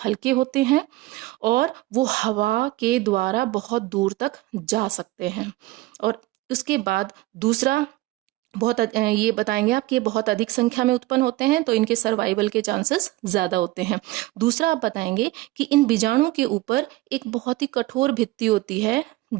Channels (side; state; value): left; quieter; 18.7 dB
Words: हल्के होते हैं और वो हवा के द्वारा बहुत दूर तक जा सकते हैं। और उसके बाद दूसरा, ये बताएंगे आप कि ये बहुत अधिक संख्या में उत्पन्न होते हैं, तो इनके सर्वाइवल के चांसेस ज्यादा होते हैं। दूसरा आप बताएंगे कि इन बीजाणु के ऊपर एक बहुत ही कठोर भित्ति होती है,